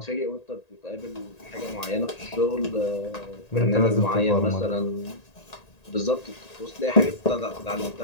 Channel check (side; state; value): right; late; 1.8 ms